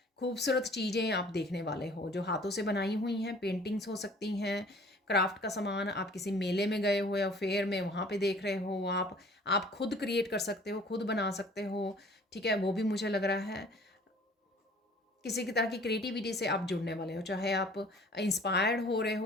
खूबसूरत चीज़ें आप देखने वाले हो, जो हाथों से बनाई हुई हैं, पेंटिंग्स हो सकती हैं, क्राफ्ट का सामान। आप किसी मेले में गए हो या फेयर में, वहाँ पे देख रहे हो आप खुद क्रिएट कर सकते हो, खुद बना सकते हो। ठीक है, वो भी मुझे लग रहा है। किसी की तरह की क्रिएटिविटी से आप जुड़ने वाले हो, चाहे आप इंस्पायर्ड हो रहे हो,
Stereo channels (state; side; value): normal; both; correlation 0.51